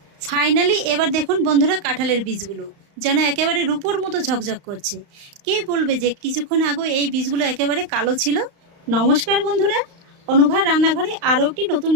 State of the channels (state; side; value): late; left; 35 ms